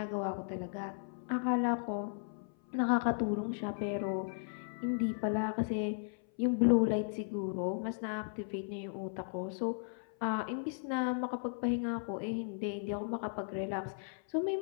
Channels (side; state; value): right; silent; 54 dB below the other